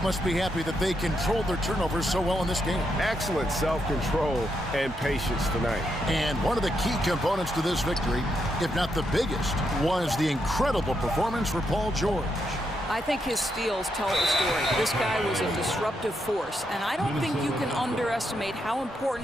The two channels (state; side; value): normal; both; correlation 0.81